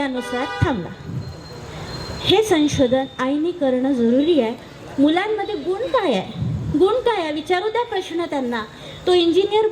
थांबला. हे संशोधन आईने करणं जरुरी आहे. मुलांमध्ये गुण काय आहे? गुण काय आहे विचारू द्या प्रश्न त्यांना. तो इंजिनियर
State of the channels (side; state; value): both; identical; correlation 1.00